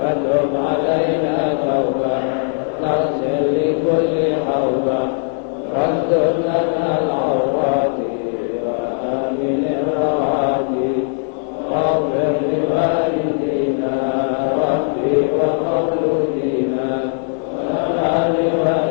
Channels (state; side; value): silent; right; 57 dB below the other